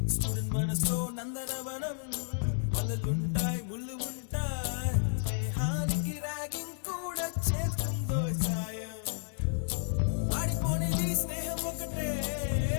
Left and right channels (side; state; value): right; silent; digital silence